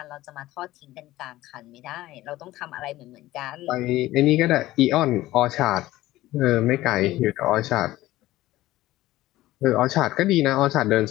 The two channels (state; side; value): quieter; right; 16.4 dB